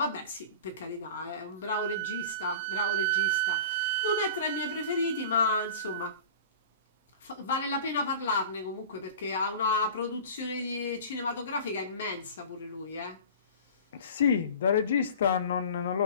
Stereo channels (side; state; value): both; inverted; correlation -0.38